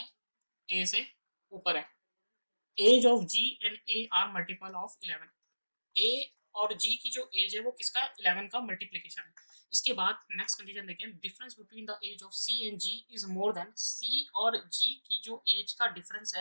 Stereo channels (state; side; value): inverted; both; correlation -1.00